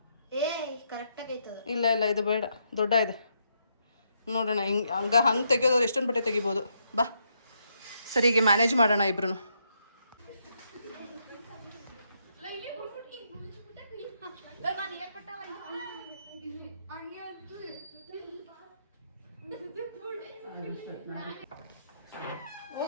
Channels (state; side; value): inverted; both; correlation -0.77